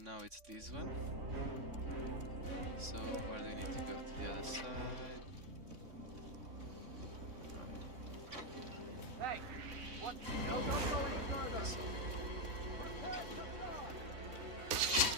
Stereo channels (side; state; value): left; late; 3.6 ms